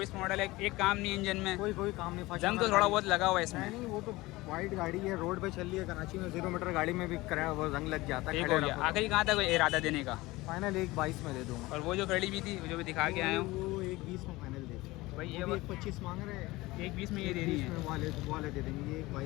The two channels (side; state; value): right; quieter; 20.2 dB